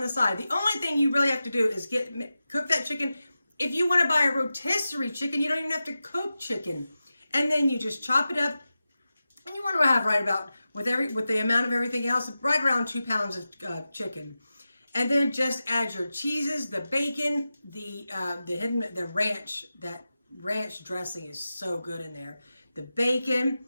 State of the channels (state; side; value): inverted; both; correlation -0.93